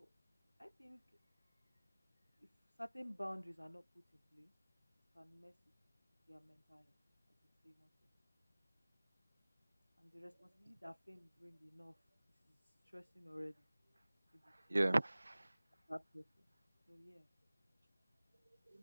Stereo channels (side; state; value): both; inverted; correlation -1.00